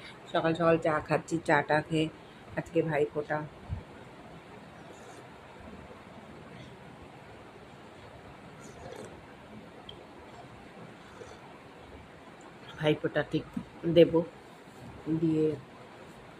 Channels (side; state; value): both; identical; correlation 1.00